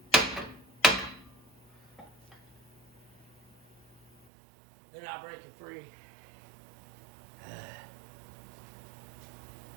They're not breaking free.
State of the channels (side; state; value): left; drops out; at 4.2 s